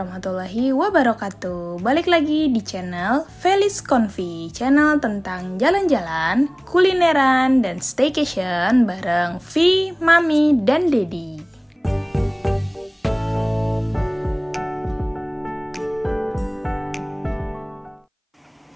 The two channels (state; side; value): identical; both; correlation 1.00